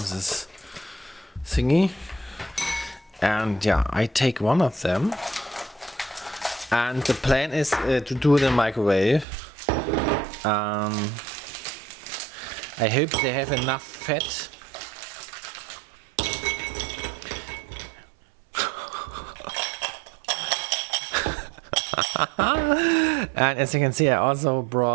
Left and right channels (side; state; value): left; drops out; at 9.2 s